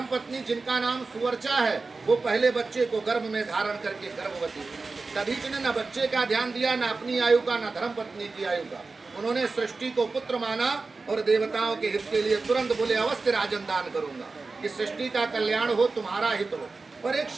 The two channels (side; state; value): left; quieter; 3.9 dB